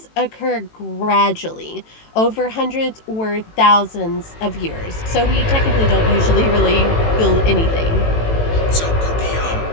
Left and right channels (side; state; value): right; late; 18 ms